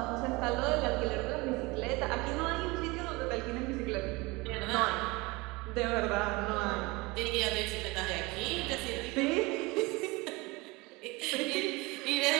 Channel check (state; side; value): quieter; left; 24.1 dB